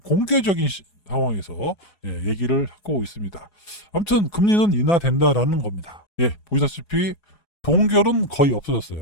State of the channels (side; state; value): right; late; 4.8 ms